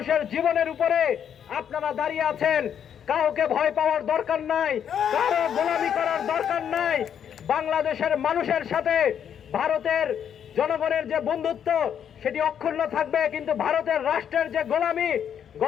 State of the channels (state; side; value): quieter; right; 8.6 dB